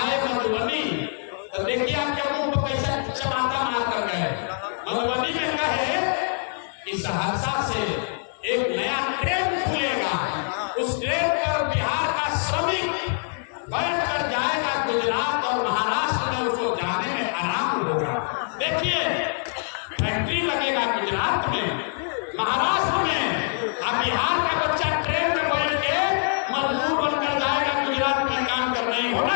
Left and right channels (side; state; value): right; silent; 60 dB below the other